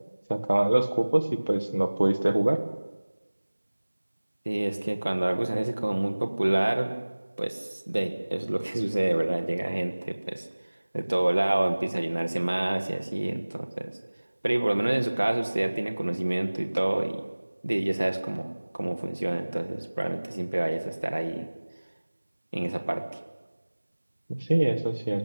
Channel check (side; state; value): both; inverted; correlation -1.00